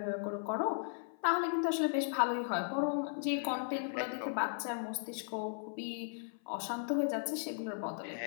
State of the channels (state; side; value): silent; right; 53 dB below the other